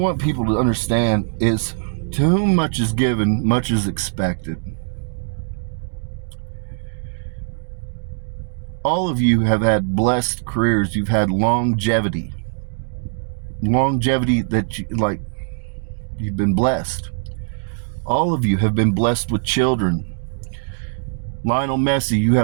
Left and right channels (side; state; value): left; silent; digital silence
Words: people to understand is, to whom much is given, much is expected. All of you have had blessed careers. You've had longevity that you've been blessed. All of you have been blessed with children. Lionel Messi, you